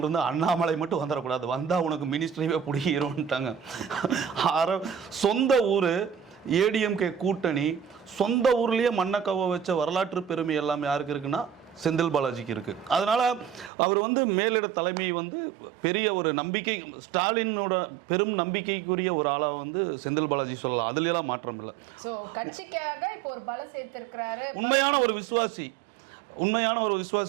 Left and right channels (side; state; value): left; drops out; at 13.7 s